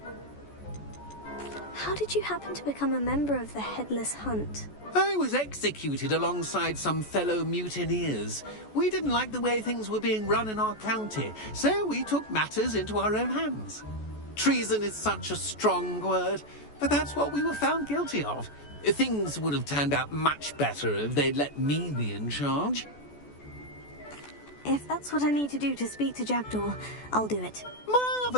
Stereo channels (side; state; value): right; late; 14 ms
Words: How did you happen to become a member of the Headless Hunt? I was executed alongside some fellow mutineers. We didn't like the way things were being run in our county, so we took matters into our own hands. Treason is such a strong word, but that's what we were found guilty of. Things would have turned out much better if they'd let me be in charge. If that's what I need to do to speak to Jackdaw, I'll do it.